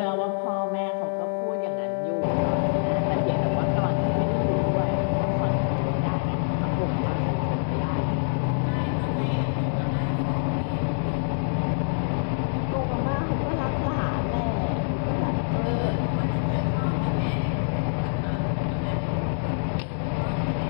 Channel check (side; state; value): right; silent; digital silence